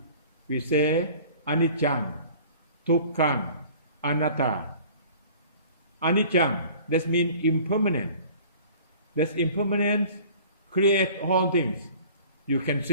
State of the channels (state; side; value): inverted; both; correlation -0.47